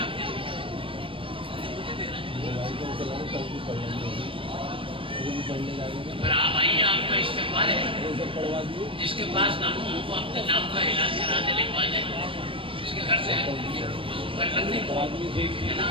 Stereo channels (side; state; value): left; late; 0.25 ms